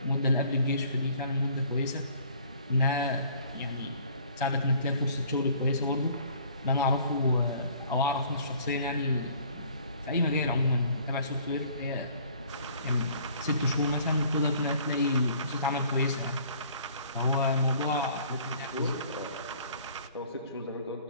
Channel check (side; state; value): both; inverted; correlation -0.54